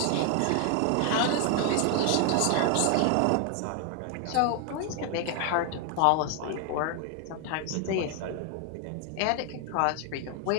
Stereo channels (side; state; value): both; different; correlation 0.00